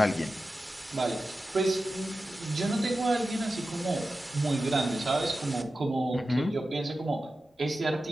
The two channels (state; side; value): normal; both; correlation 0.93